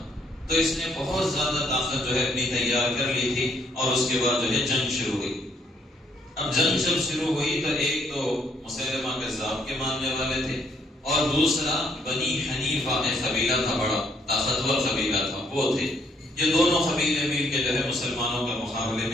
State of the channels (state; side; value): normal; both; correlation 0.69